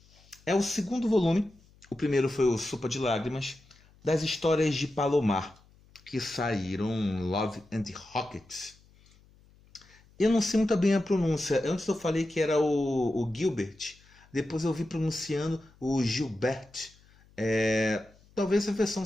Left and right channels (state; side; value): noise; left; hum, 29 dB below the sound